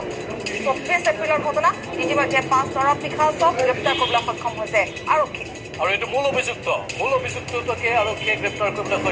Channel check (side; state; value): both; identical; correlation 1.00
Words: 24 এপ্ৰিলৰ ঘটনা। ইতিমধ্যে 5 নিশাচক গ্ৰেপ্তাৰ কৰিবলৈ সক্ষম হৈছে আৰক্ষী। আৰু এইটো মূল অভিযুক্তকে আৰক্ষীয়ে গ্ৰেপ্তাৰ কৰিবলৈ